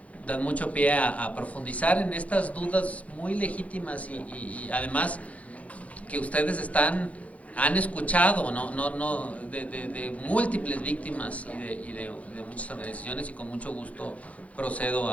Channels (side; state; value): right; late; 0.066 ms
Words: mucho pie a profundizar en estas dudas muy legítimas y además que ustedes han escuchado de múltiples víctimas y de muchas organizaciones, y con mucho gusto procedo